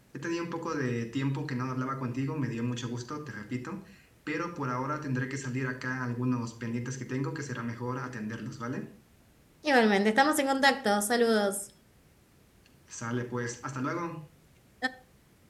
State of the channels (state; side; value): identical; both; correlation 1.00